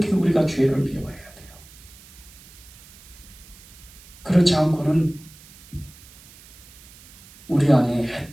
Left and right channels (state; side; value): noise; right; hiss, 22 dB below the sound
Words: 우리가 죄를 미워해야 돼요. 그렇지 않고는 우리 안에